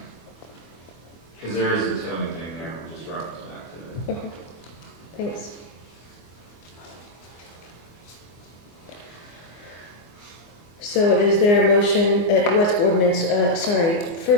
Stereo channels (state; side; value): late; right; 24 ms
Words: Because there is a towing thing there, we'll just reference back to it. Okay, thanks. So is there a motion, what's ordinance, sorry,